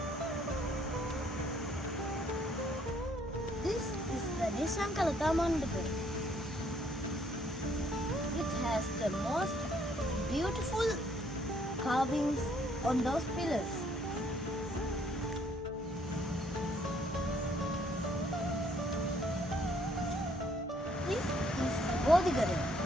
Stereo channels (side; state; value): both; normal; correlation 0.65